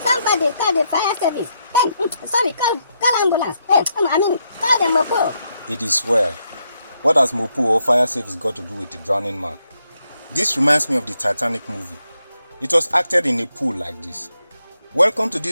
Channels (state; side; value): inverted; both; correlation -0.79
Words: call the fire service. Hey, sorry, call ambulance. Hey, call the mopo. It is well. What has Mopo or fire service got to do with the drowning man? This reminds me of the Titanic movie. It was acted in a pool like this. Welcome to